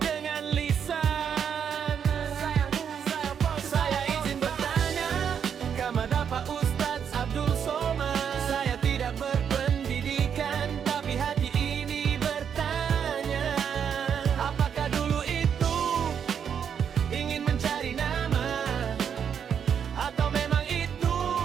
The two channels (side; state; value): left; quieter; 7.7 dB